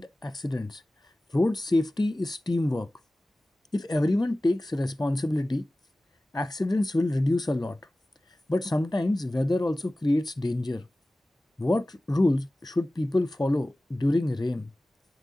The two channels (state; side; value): normal; both; correlation 0.97